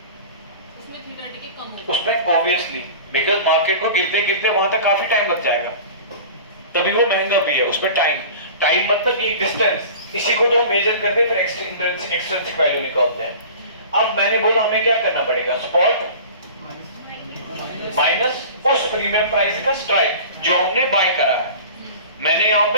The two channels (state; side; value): inverted; both; correlation -0.39